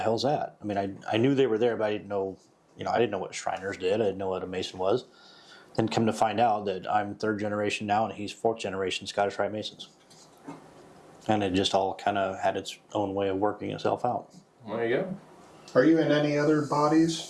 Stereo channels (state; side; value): identical; both; correlation 1.00